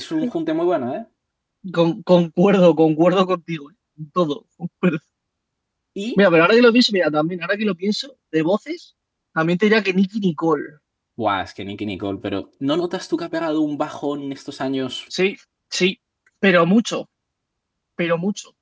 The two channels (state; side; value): identical; both; correlation 1.00